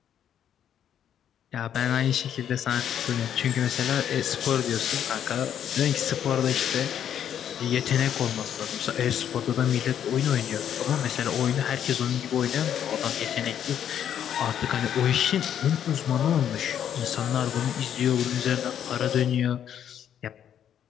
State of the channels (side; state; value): right; quieter; 9.5 dB